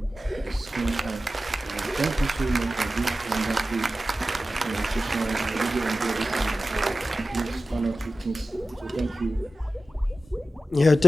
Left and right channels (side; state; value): both; normal; correlation 0.94